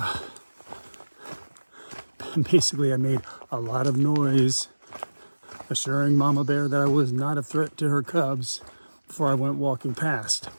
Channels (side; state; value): both; inverted; correlation -1.00